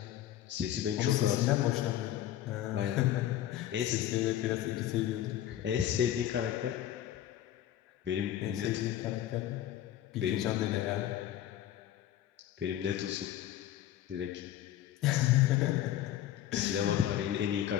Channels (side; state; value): right; quieter; 12.2 dB